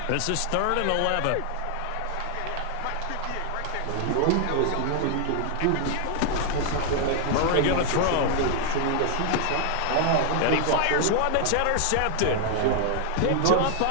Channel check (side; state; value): both; different; correlation 0.00